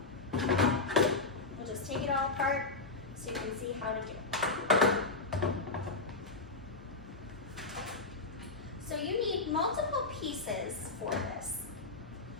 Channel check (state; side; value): quieter; right; 3.6 dB